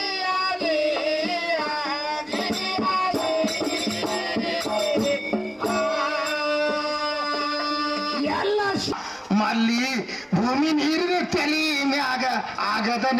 ಮಲ್ಲಿ ಭೂಮಿ ನೀರಿನ ತಲೆ ಮ್ಯಾಗ ಆಗದ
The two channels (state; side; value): identical; both; correlation 1.00